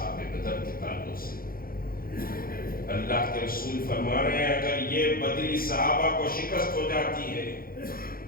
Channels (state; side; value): late; right; 0.42 ms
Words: بدر کے تعلق سے اللہ کے رسول فرما رہے ہیں اگر یہ بدری صحابہ کو شکست ہو جاتی ہے